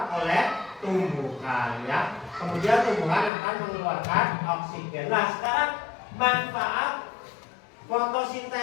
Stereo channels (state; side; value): drops out; right; at 3.3 s